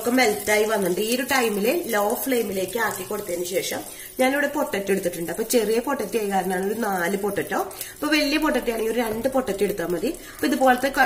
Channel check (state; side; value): identical; both; correlation 1.00